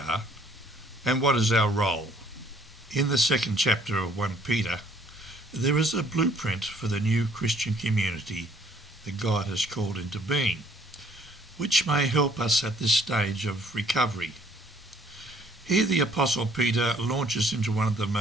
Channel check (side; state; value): both; normal; correlation 0.61